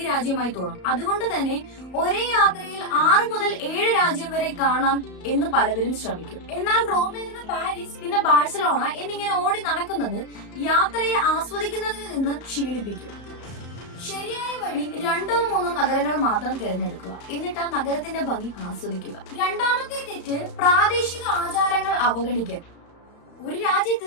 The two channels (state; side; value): late; right; 33 ms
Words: രാജ്യമായി തോന്നും. അതുകൊണ്ട് തന്നെ ഒരേ യാത്രയിൽ 6 മുതൽ 7 രാജ്യം വരെ കാണാം എന്ന് പലവരും ശ്രമിക്കും. എന്നാൽ റോമിൽ നിന്ന് പാരീസ്, പിന്നെ ബാഴ്സലോണ എന്നിങ്ങനെ ഓടി നടക്കുന്നത് യാത്രയെ ആസ്വദിക്കുന്നതിൽ നിന്ന് ക്ഷീണിപ്പിക്കും. ശരിയായ വഴി 2-3 നഗരങ്ങൾ മാത്രം തിരഞ്ഞെടുക്കുക. എന്നിട്ട് ആ നഗരത്തിന്റെ ഭംഗി ആസ്വദിക്കുക. രണ്ടാമത്തെ തെറ്റ് പ്രാദേശിക ആചാരങ്ങൾ അവഗണിക്കൽ. ഒരു രാജ്യത്ത്